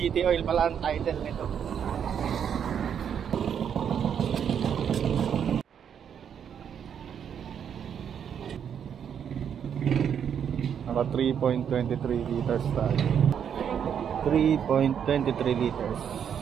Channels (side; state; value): left; quieter; 8.2 dB